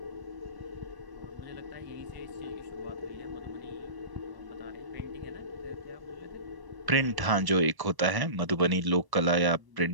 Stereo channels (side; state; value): left; late; 1.0 ms